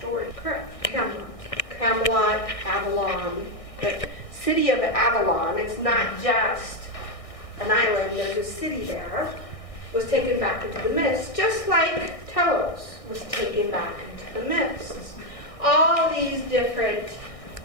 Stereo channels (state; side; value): late; right; 1.6 ms